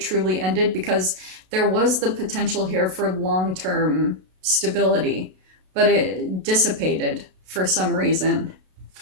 ended, because there was the potential here for long-term stability, but it dissipated for some reason.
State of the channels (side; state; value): left; late; 32 ms